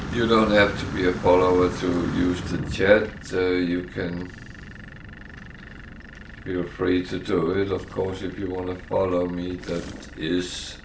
You don't have to be a follower to use the chat. You can feel free to do it. Of course, if you want to follow me, that is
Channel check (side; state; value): both; identical; correlation 1.00